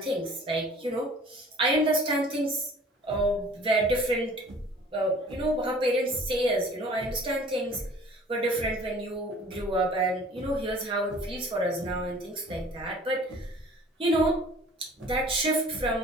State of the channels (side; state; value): both; normal; correlation 0.49